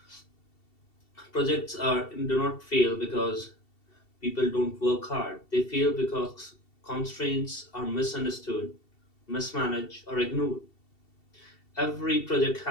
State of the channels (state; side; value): late; right; 2.7 ms